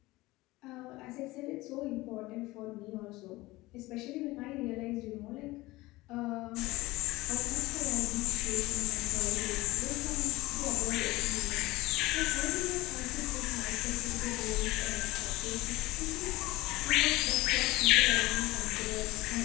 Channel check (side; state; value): right; quieter; 19.7 dB